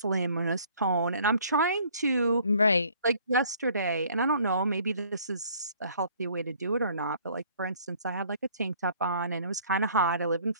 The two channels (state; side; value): inverted; both; correlation -0.58